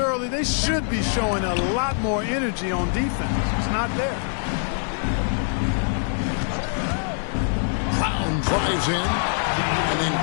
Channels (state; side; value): silent; right; 58 dB below the other